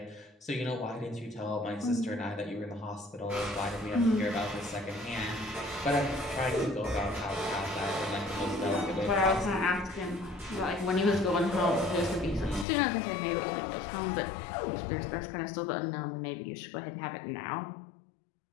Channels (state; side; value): drops out; right; at 12.7 s